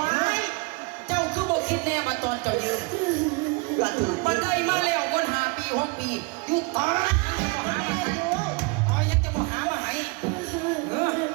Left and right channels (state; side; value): quieter; left; 28.9 dB